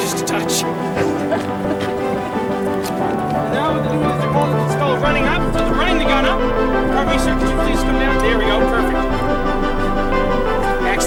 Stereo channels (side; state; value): both; identical; correlation 1.00